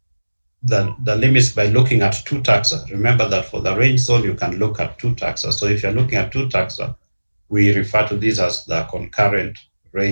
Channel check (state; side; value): inverted; both; correlation -1.00